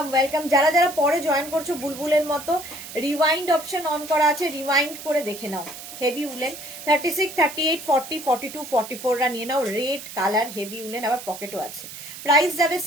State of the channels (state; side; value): noise; right; hiss, 12 dB below the sound